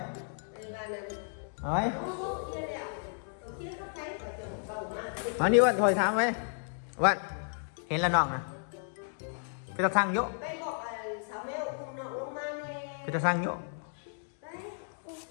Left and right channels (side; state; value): right; silent; digital silence